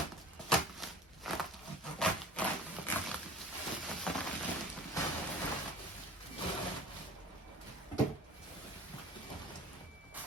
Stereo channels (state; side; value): normal; both; correlation 0.42